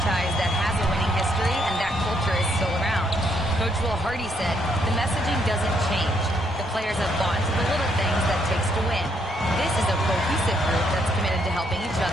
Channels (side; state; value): both; normal; correlation 0.73